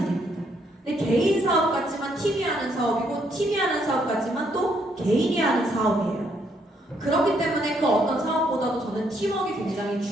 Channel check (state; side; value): normal; both; correlation 0.72